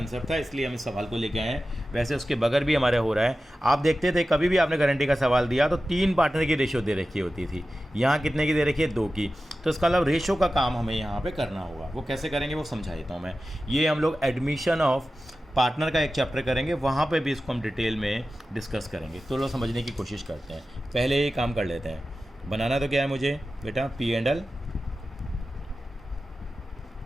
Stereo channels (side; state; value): both; normal; correlation 0.94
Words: था, इसलिए हम इस सवाल को लेके आए हैं। वैसे उसके बगैर भी हमारे हो रहा है। आप देखते थे कभी भी आपने गारंटी का सवाल दिया तो 3 पार्टनर की रेशियो दे रखी होती थी, यहाँ कितने की दे रखी है, 2 की। तो इसका मतलब रेशियो का काम हमें यहाँ पर करना होगा। वो कैसे करेंगे वो समझा देता हूँ मैं। ये हम लोग एडमिशन ऑफ पार्टनर का एक चैप्टर करेंगे, वहाँ पे भी इसको हम डिटेल में डिस्कस करेंगे। तो लोग समझने की कोशिश करते हैं। पहले ये काम कर लेते हैं। बनाना तो क्या है मुझे बेटा, P&L